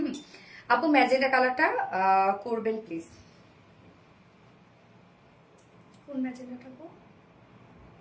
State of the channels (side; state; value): both; identical; correlation 1.00